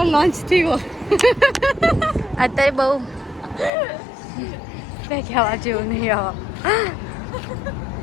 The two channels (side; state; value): right; drops out; at 3.7 s